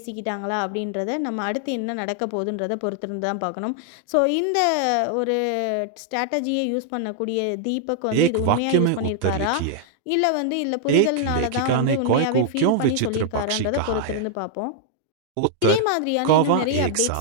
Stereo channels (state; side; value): different; both; correlation -0.01